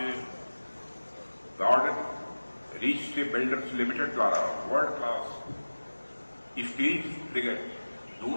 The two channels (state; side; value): inverted; both; correlation -1.00